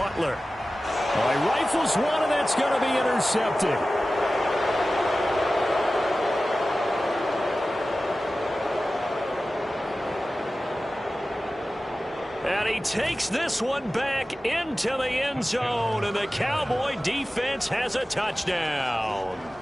Oh, he rifles one, and that's going to be intercepted. And he takes this one back into the end zone, and the Cowboy defense has a touchdown.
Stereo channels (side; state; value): both; normal; correlation 0.95